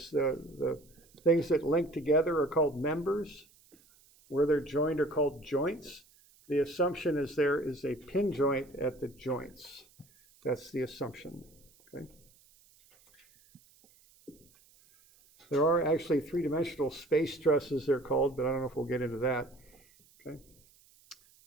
The things that link together are called members. Where they're joined are called joints. The assumption is there is a pin joint at the joints. That's the assumption. Okay. There are actually three-dimensional space trusses, they're called, but I don't know if we'll get into that. Okay.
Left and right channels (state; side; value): noise; right; hiss, 29 dB below the sound